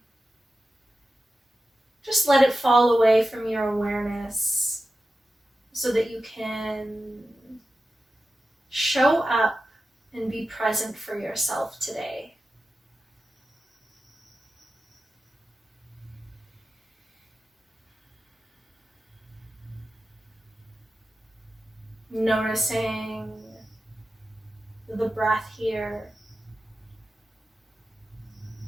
just let it fall away from your awareness, so that you can show up and be present for yourself today. Noticing the breath here.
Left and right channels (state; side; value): normal; both; correlation 0.93